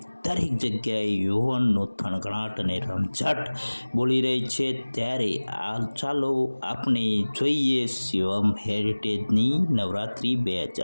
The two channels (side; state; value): both; inverted; correlation -1.00